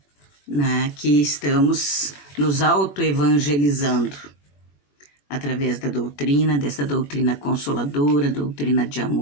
né, que estamos nos autoevangelizando através da doutrina, dessa doutrina consoladora, doutrina de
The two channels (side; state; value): right; late; 21 ms